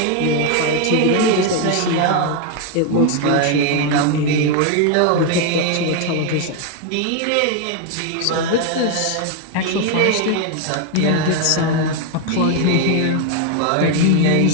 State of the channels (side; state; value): both; different; correlation 0.01